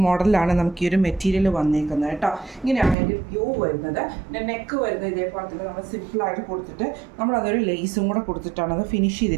മോഡലാണ് നമുക്ക് ഈ ഒരു മെറ്റീരിയൽ വന്നിരിക്കുന്നത് കേട്ടോ. ഇങ്ങനെയാണ് അതിൻ്റെ വ്യൂ വരുന്നത്. പിന്നെ നെക്ക് വരുന്നത് ഇതേപോലെ തന്നെ നമ്മൾ സിമ്പിളായിട്ട് കൊടുത്തിട്ട് നമ്മളതൊരു ലേസും കൂടെ കൊടുത്തിട്ടാണ് അത് ഫിനിഷ്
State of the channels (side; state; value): left; drops out; at 3.0 s